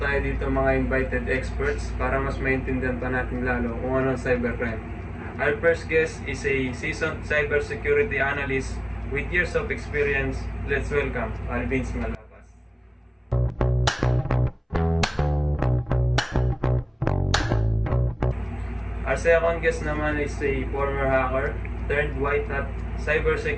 dito mga invited experts para mas maintindihan pa natin lalo kung ano ang cybercrime. Our first guest is a seasoned cybersecurity analyst with years of experience. Let's welcome Alvin Malapas. Our second guest naman is a former hacker, turned white hat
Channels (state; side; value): identical; both; correlation 1.00